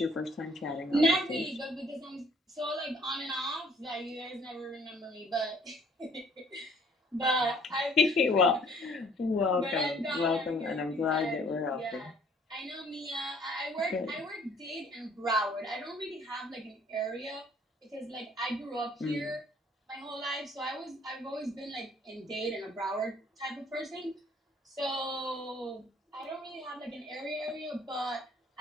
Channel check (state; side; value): normal; both; correlation 0.59